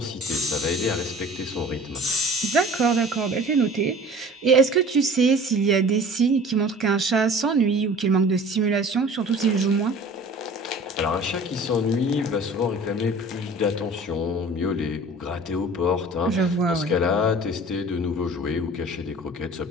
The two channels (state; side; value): normal; both; correlation 0.44